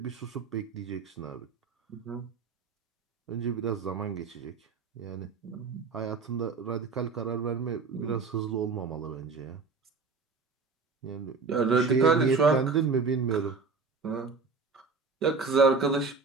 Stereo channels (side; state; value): left; quieter; 4.7 dB